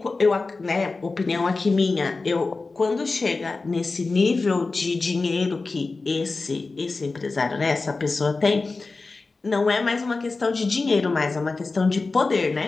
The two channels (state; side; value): quieter; right; 3.8 dB